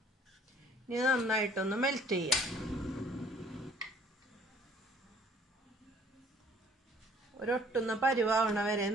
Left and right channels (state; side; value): normal; both; correlation 0.56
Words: ഇനി നന്നായിട്ടൊന്ന് മെൽറ്റ് ചെയ്യാം. ഒരൊട്ടുന്ന പരുവാവണ വരെ